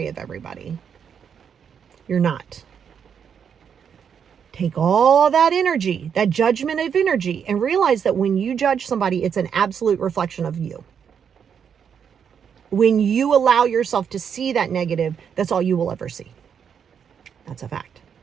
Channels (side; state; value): left; quieter; 7.5 dB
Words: of everybody? You're not. Take all that energy, that judgment of energy, and realize that when you judge somebody, it's an absolute reflection of you. When you allow yourself to see that negative, that's all you will ever see. That's a fact.